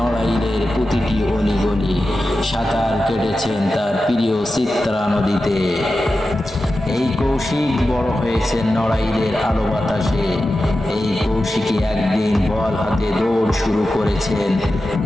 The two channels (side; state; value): both; normal; correlation 0.92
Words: প্রতিটি অলিগলি, সাঁতার কেটেছেন তার প্রিয় চিত্রা নদীতে। এই কৌশিক বড় হয়েছেন নড়াইলের আলো বাতাসে। এই কৌশিকই একদিন বল হাতে দৌড় শুরু করেছেন